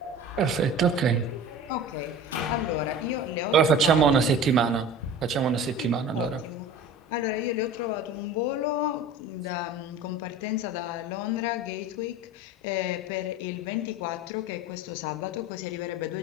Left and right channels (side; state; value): both; normal; correlation 0.38